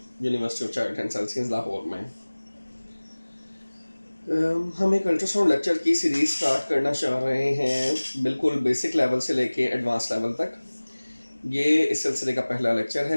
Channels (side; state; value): both; inverted; correlation -1.00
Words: of child and sciences Lahore में। हम एक अल्ट्रासाउंड लेक्चर की सीरीज़ स्टार्ट करना चाह रहे हैं, बिल्कुल बेसिक लेवल से लेके एडवांस लेवल तक। ये इस सिलसिले का पहला लेक्चर